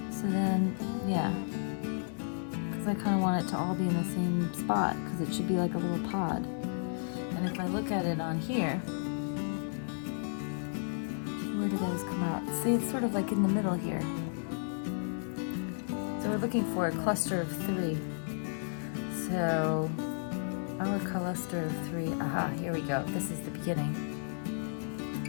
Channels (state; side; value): silent; right; digital silence